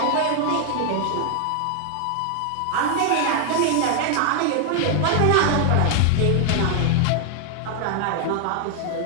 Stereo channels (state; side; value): different; both; correlation 0.00